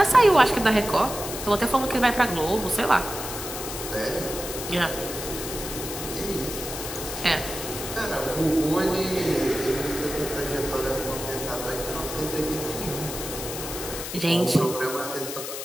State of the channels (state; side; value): noise; left; hiss, 7 dB below the sound